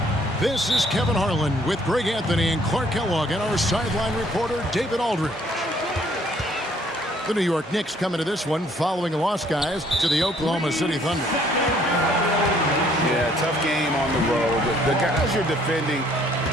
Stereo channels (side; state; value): both; normal; correlation 0.62